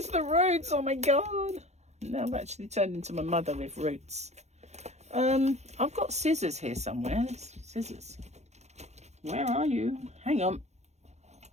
the roots, oh my god. Now I've actually turned into my mother with roots. I've got scissors here somewhere. Scissors. Where are you? Hang on.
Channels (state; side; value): late; left; 0.32 ms